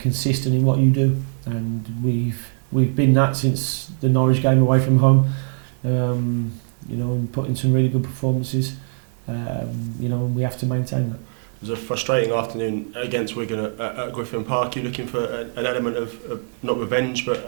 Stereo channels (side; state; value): left; silent; digital silence